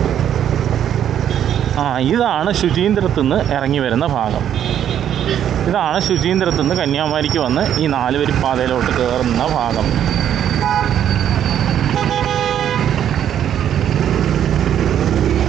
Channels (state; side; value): quieter; left; 10.0 dB